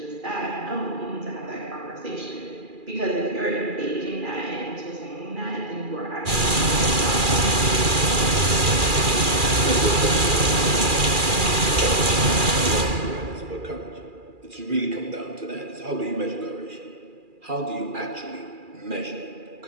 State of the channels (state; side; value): late; left; 2.4 ms